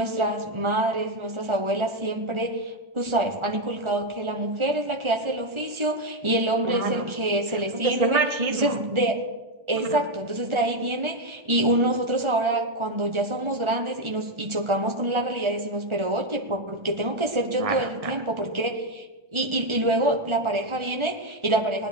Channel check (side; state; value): left; late; 1.4 ms